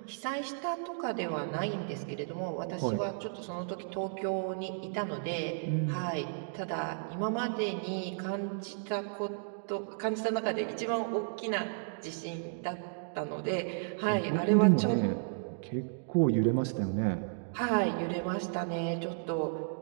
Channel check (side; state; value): left; silent; digital silence